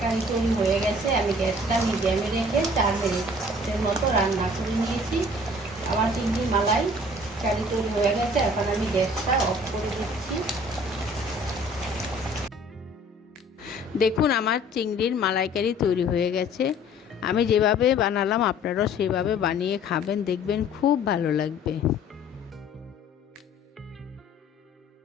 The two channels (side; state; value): both; normal; correlation 0.52